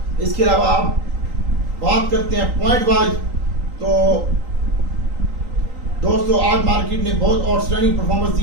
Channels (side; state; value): left; late; 3.8 ms